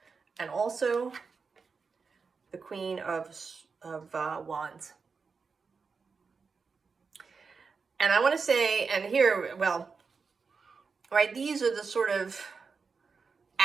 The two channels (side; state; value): left; quieter; 5.0 dB